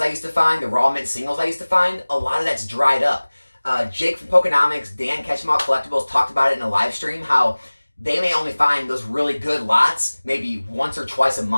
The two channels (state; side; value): inverted; both; correlation -1.00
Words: I used to find, the raw mint singles I used to find, a lot of that's dried up. Jake from Pokenomics, Dan Catch 'em All Collectibles talked about it in a live stream, how they may only find those really good lots maybe once or twice a